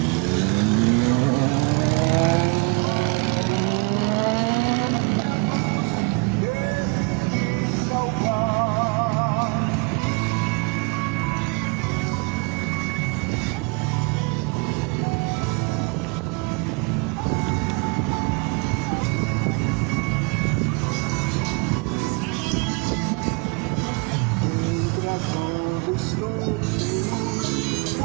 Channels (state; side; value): quieter; left; 30.3 dB